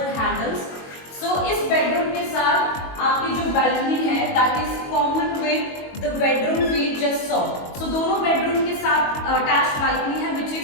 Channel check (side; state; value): right; late; 22 ms